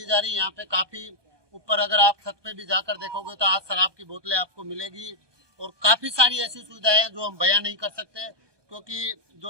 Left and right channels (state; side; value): late; left; 1.2 ms